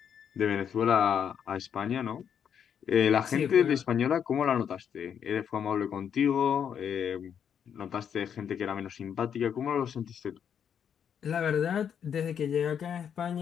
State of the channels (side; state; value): right; quieter; 8.1 dB